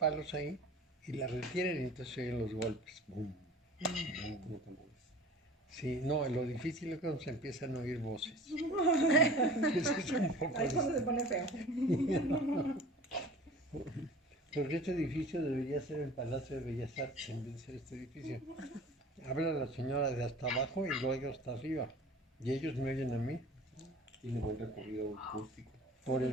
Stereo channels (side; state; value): both; normal; correlation 0.43